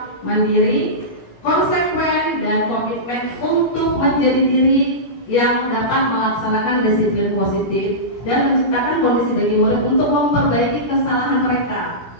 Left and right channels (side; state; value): right; late; 17 ms